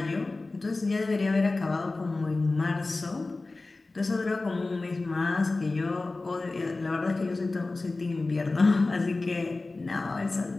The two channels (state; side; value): quieter; right; 3.3 dB